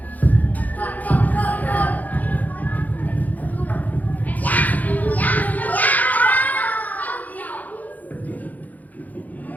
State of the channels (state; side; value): late; right; 0.080 ms